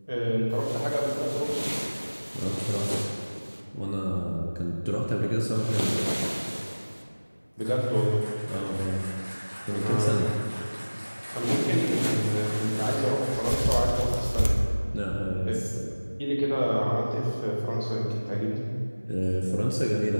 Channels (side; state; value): both; inverted; correlation -1.00